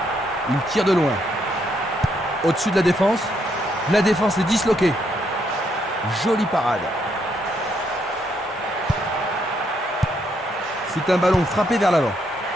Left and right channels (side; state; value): both; normal; correlation 0.74